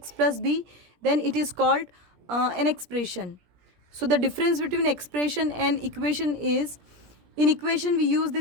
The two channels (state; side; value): late; left; 17 ms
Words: plus b, then it is called an expression. So the difference between expression and equation is, in equation we use